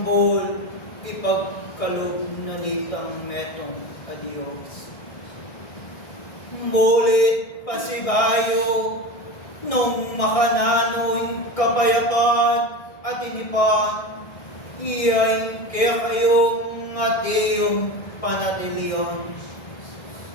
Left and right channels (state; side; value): late; right; 1.6 ms